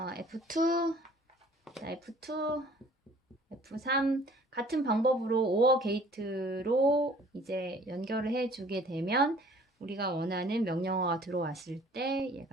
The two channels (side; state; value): both; normal; correlation 0.53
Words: F2, F3 같은 방법으로 오어 게이트로 이제 연결을 해주게 되면 우리가 원하는 명령어가 들어왔을 때